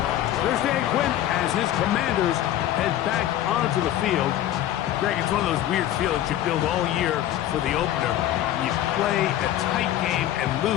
There's Dan Quinn as his Commanders head back onto the field. Greg, it's one of those weird feelings you build all year for the opener. You play a tight game and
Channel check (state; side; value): quieter; right; 12.6 dB